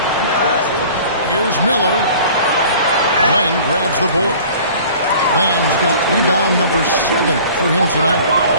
Here's Miller. Len grabs the board. Len's got rebound number 7 for him tonight.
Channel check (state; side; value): inverted; both; correlation -0.46